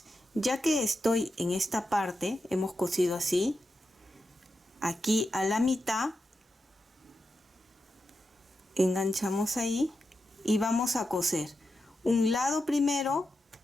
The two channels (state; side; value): normal; both; correlation 0.88